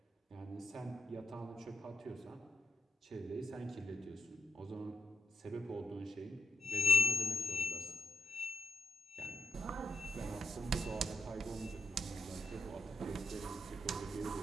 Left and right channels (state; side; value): normal; both; correlation 0.77